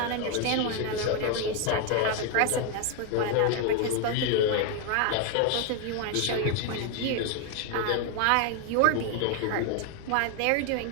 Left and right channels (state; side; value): different; both; correlation 0.01